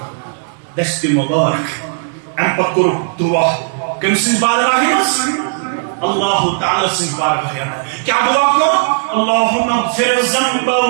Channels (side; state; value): left; silent; digital silence